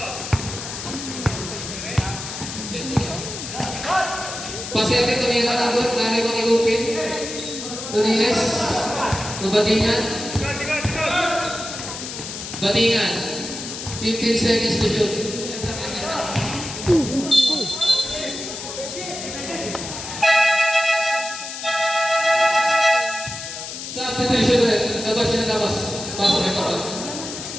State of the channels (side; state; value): left; noise; hiss, 8 dB below the sound